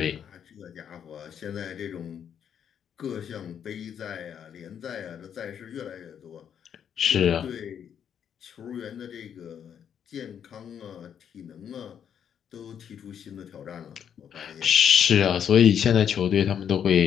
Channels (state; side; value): quieter; right; 8.5 dB